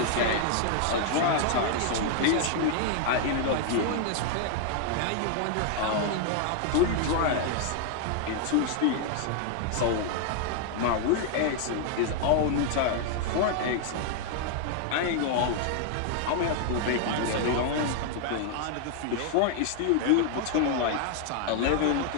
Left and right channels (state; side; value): different; both; correlation 0.00